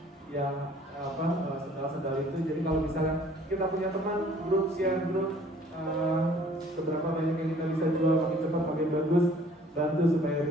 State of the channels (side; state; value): both; normal; correlation 0.55